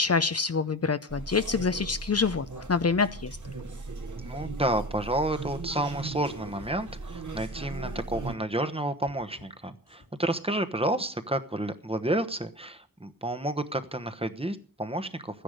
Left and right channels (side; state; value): both; normal; correlation 0.32